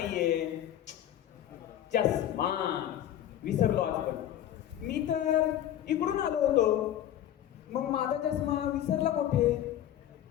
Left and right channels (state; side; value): quieter; right; 11.6 dB